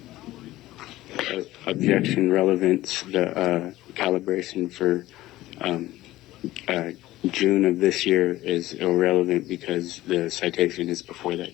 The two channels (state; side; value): quieter; right; 16.4 dB